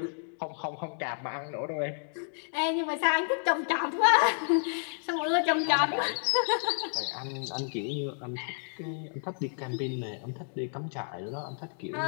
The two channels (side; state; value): right; silent; digital silence